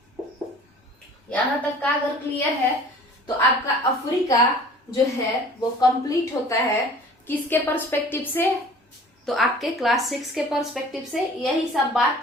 यहां तक का अगर क्लियर है तो आपका अफ्रीका जो है वो कंप्लीट होता है किसके पर्सपेक्टिव से, तो आपके क्लास 6 के पर्सपेक्टिव से। यही सब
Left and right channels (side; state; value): both; normal; correlation 0.48